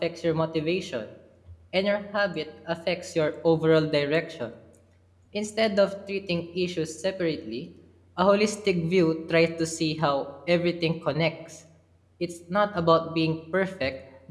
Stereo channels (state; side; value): identical; both; correlation 1.00